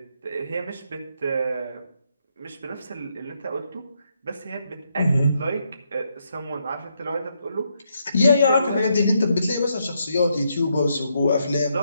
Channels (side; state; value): both; inverted; correlation -0.78